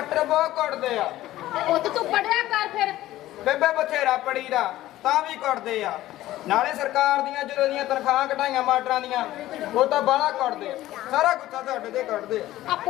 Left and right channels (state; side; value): quieter; right; 15.2 dB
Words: ਬਹੁਤ ਕੁੱਟਦੇ ਆ। ਪੁੱਤ ਤੂੰ ਪੜਿਆ ਕਰ ਫਿਰ। ਬੇਬੇ ਬਥੇਰਾ ਪੜੀਦਾ ਤਾਂ ਵੀ ਕੁੱਟਦੇ ਆ। ਨਾਲੇ ਸਰਕਾਰ ਦੀਆਂ ਜਦੋਂ ਦੀਆਂ ਤਨਖਾਹਾਂ ਘਟਾਈਆਂ ਮਾਸਟਰਾਂ ਦੀਆਂ, ਉਹ ਤਾਂ ਬਾਹਲਾ ਕੁੱਟਦੇ ਆ। ਸਾਰਾ ਗੁੱਸਾ ਤੁਹਾਡੇ ਤੇ ਕੱਢਦੇ ਆ। ਆ